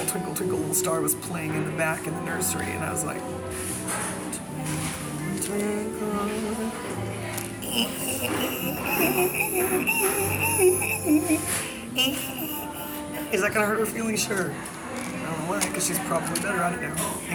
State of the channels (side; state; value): both; identical; correlation 1.00